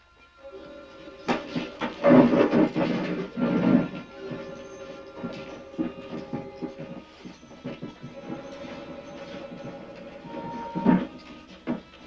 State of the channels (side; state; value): both; identical; correlation 1.00